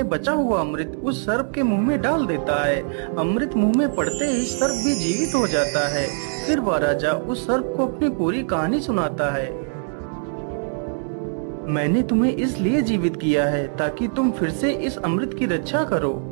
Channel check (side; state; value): left; silent; digital silence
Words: बचा हुआ अमृत उस सर्प के मुंह में डाल देता है। अमृत मुंह में पड़ते ही सर्प भी जीवित हो जाता है। फिर वह राजा उस सर्प को अपनी पूरी कहानी सुनाता है। मैंने तुम्हें इसलिए जीवित किया है ताकि तुम फिर से इस अमृत की रक्षा करो।